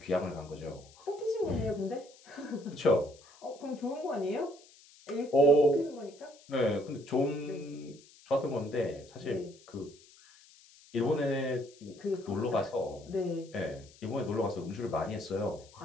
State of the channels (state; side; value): noise; left; hiss, 25 dB below the sound